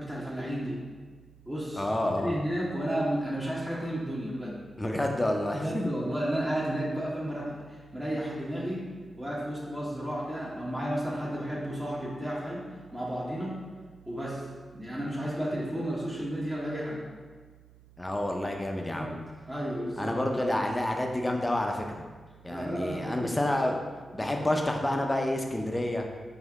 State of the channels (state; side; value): noise; right; hum, 23 dB below the sound